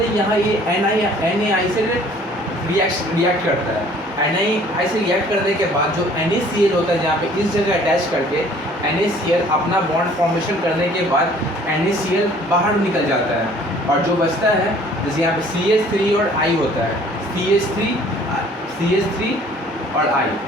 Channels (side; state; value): both; normal; correlation 0.54